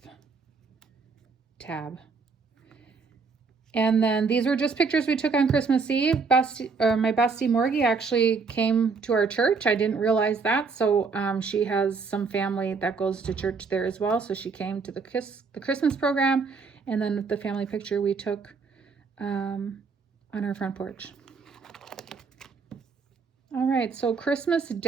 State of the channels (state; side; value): quieter; left; 4.9 dB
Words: tab. And then these were just pictures we took on Christmas Eve. My bestie Morgie actually came to our church. I didn't realize that. So she has some family that goes to church there as well. So she came to the Christmas program. And then the family picture we took on our front porch. All right, so Christmas